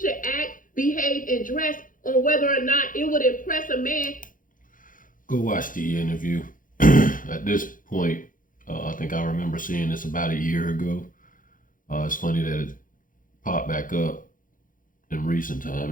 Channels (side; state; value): right; late; 0.39 ms